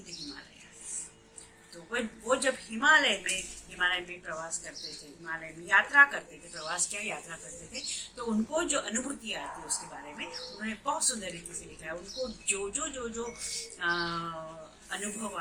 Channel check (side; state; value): both; identical; correlation 1.00